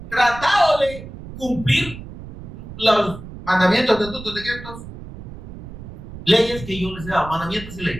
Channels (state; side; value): noise; right; rumble, 13 dB below the sound